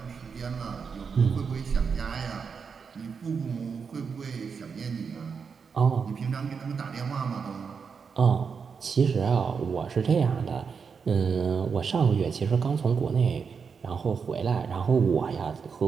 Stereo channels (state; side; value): quieter; left; 5.9 dB